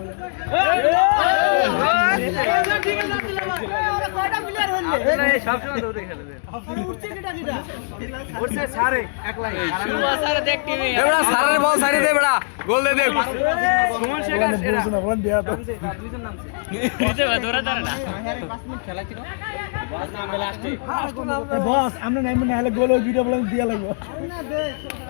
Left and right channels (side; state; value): right; silent; digital silence